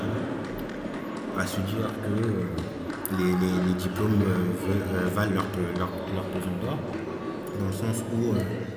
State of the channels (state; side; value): identical; both; correlation 1.00